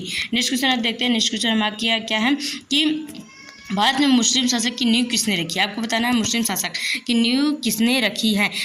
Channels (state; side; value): identical; both; correlation 1.00